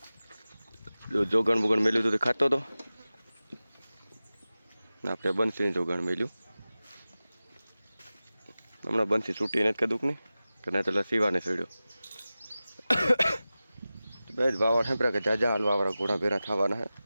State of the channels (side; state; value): both; inverted; correlation -0.96